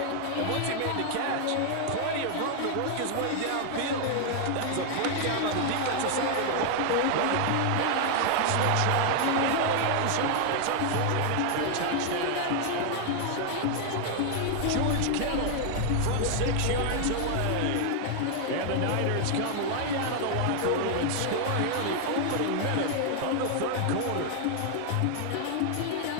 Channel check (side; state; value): both; different; correlation 0.00